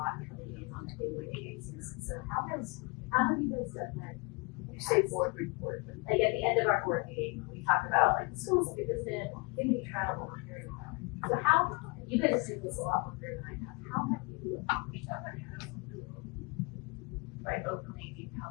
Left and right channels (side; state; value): right; quieter; 28.6 dB